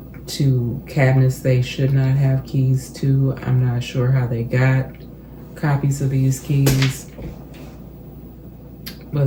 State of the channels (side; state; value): both; identical; correlation 1.00